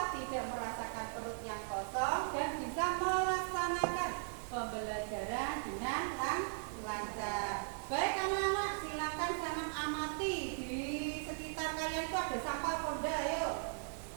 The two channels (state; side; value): silent; left; digital silence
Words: tidak merasakan perut yang kosong dan bisa melaksanakan pembelajaran dengan lancar. Baik anak-anak, silakan jangan amati di sekitar kalian itu ada sampah Ponda, ayo.